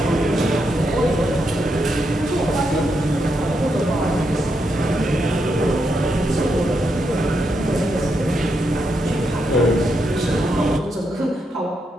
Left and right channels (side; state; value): both; normal; correlation 0.82